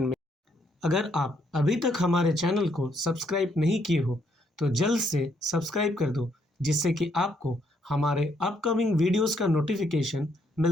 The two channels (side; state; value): both; normal; correlation 0.72